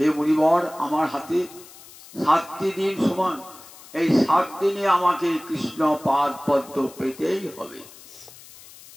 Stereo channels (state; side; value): noise; left; hiss, 20 dB below the sound